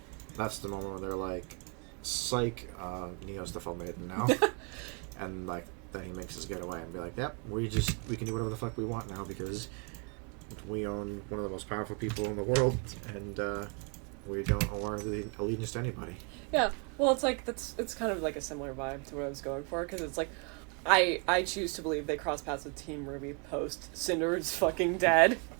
that's the moment where they're like, psych, Neo's the Fall Maiden now. And like then he makes his getaway and be like, yep, we can do whatever the fuck we want now because we own one of the most powerful people in the world, and we don't owe our allegiance to anybody. Yeah, well, it's kind of like a similar vibe to what I was going for, because it's like, I choose to believe they cross paths with Team RWBY post Cinder is fucking dead.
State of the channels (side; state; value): left; quieter; 34.6 dB